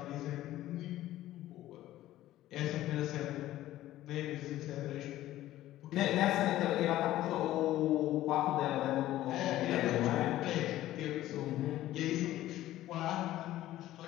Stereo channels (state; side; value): quieter; right; 14.5 dB